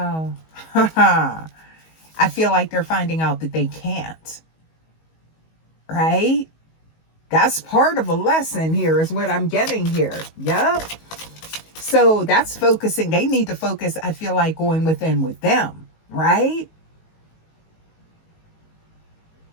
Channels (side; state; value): right; late; 19 ms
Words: I feel like they're finding out that they can't. Right? That's part of a lesson here is what I'm getting here. Yep. So that's focusing. They need to focus, I feel like, going within with them. Right?